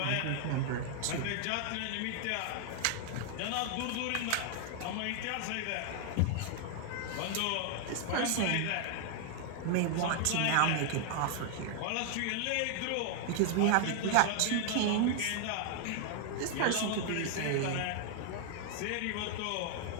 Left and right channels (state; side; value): different; both; correlation 0.00